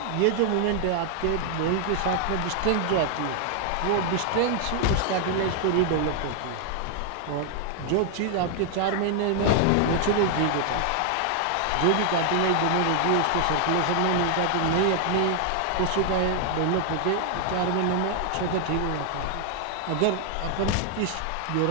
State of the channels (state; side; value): different; both; correlation 0.00